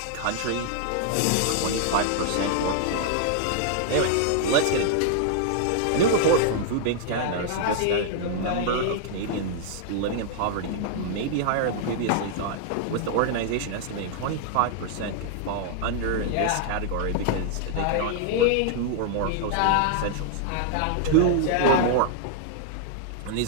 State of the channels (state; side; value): different; both; correlation -0.01